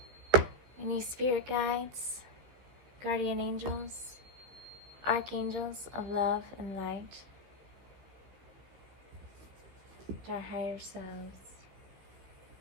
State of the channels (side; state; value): left; late; 15 ms